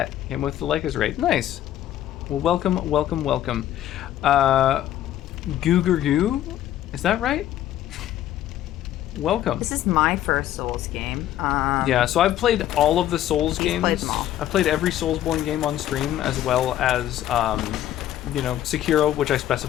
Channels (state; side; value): quieter; right; 12.4 dB